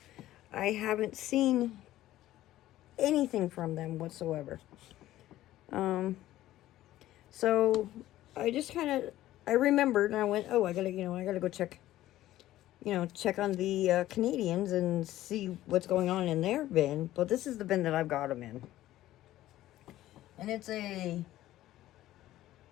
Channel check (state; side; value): quieter; right; 14.6 dB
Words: I haven't seen anything from them whatsoever. So I just I remembered and I went, oh, I gotta go check on the Canadians and see what's going on in their bin. But this is the bin that I've got them in. And it's a